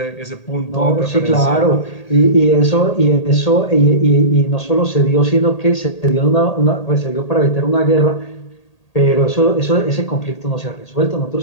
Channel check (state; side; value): late; right; 1.8 ms